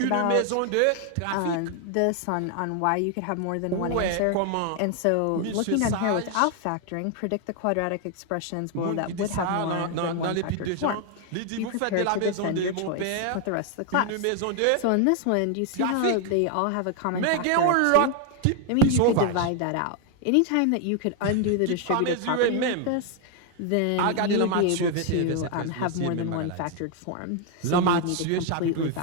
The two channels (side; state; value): both; different; correlation 0.00